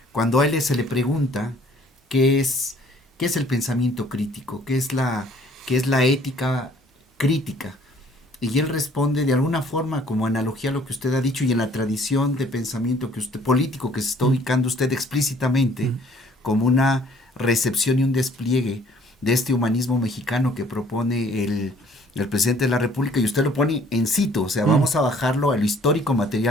cuando a él se le pregunta qué es el pensamiento crítico, qué es la ética crítica. Y él responde de alguna forma como analogía a lo que usted ha dicho y en la tradición de pensamiento que usted, político que se está ubicando usted explícitamente, como una recepción y un despliegue de este humanismo mexicano que propone el presidente de la República, y usted lo pone en situ, o sea, vamos a bajarlo a lo histórico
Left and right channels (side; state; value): both; normal; correlation 0.58